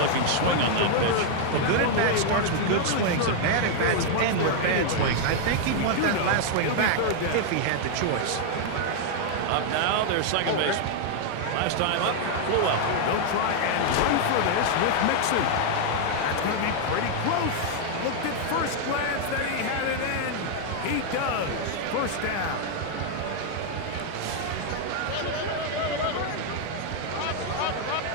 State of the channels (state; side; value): different; both; correlation 0.00